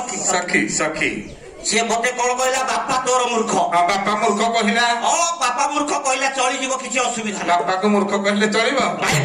ସଖୀ ସଖୀ ସିଏ ମତେ କଣ କହିଲା ବାପା ତୋର ମୂର୍ଖ ହଁ ବାପା ମୂର୍ଖ କହିଲା ବାପା ମୂର୍ଖ କହିଲା ଚଳିଯିବ କିଛି ଅସୁବିଧା ନାହିଁ ବାପାକୁ ମୂର୍ଖ କହିଲେ ଚଳିବ ଭାଇ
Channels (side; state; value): both; identical; correlation 1.00